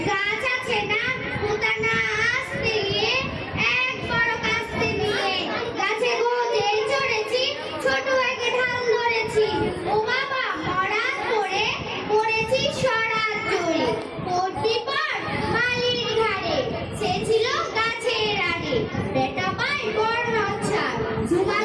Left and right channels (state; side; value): identical; both; correlation 1.00